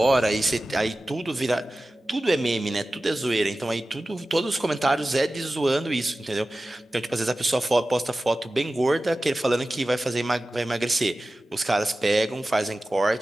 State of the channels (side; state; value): both; normal; correlation 0.95